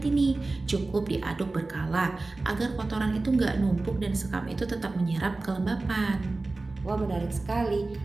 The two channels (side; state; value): left; quieter; 3.3 dB